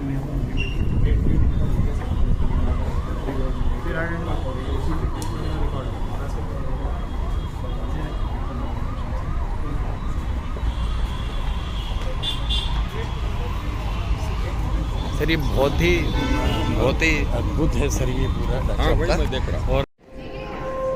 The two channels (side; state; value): both; identical; correlation 1.00